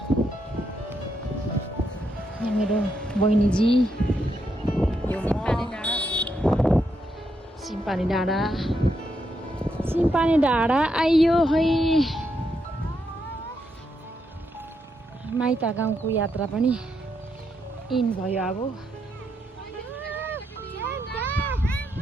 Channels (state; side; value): normal; both; correlation 0.80